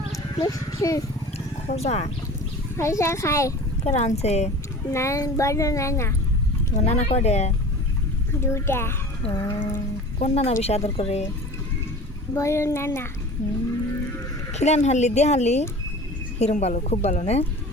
মিষ্টি খোজা খাজা খাই। কে রানছে? না বড় নানা তোমার নানা কয়ডে? দুটা ও, কোন নানা বেশি আদর করে? বড় নানা। খিলান হারলি দিয়ে হারলি হিরম ভালো, খুব ভালো না?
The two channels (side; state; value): both; normal; correlation 0.39